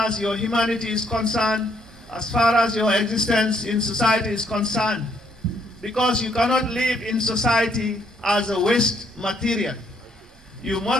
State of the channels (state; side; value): normal; both; correlation 0.70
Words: your humanity is concerned, as far as your existence in society is concerned. Because you cannot live in society as a waste material. You